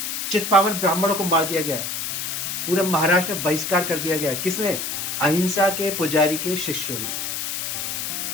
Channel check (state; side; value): noise; left; hiss, 3 dB below the sound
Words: चित्पावन ब्राह्मणों को मार दिया गया, पूरे महाराष्ट्र में बहिष्कार कर दिया गया। किसने? अहिंसा के पुजारी के शिष्यों ने।